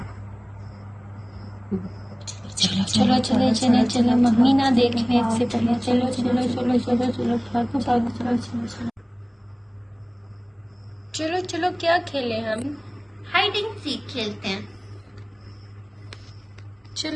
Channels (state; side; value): identical; both; correlation 1.00